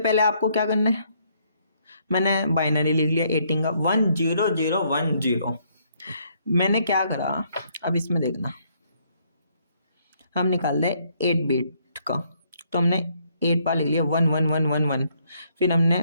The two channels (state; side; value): inverted; both; correlation -0.70